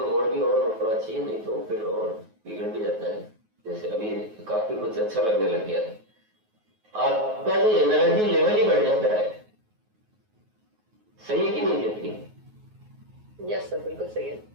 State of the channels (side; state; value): left; late; 9.4 ms